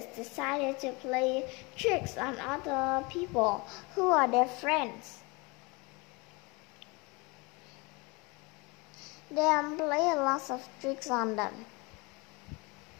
decided to play tricks on other people who are their friends. They play lots of tricks on them.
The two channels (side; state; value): right; quieter; 27.4 dB